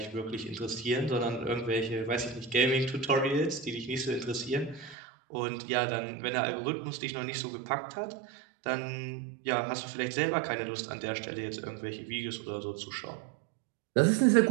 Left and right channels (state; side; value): drops out; left; at 5.0 s